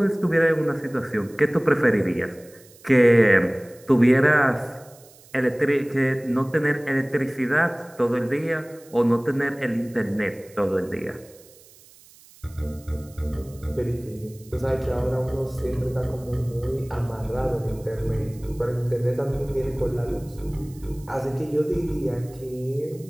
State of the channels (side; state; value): right; noise; hiss, 25 dB below the sound